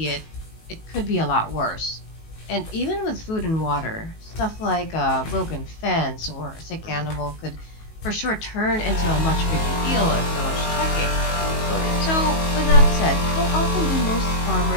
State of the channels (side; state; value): right; late; 19 ms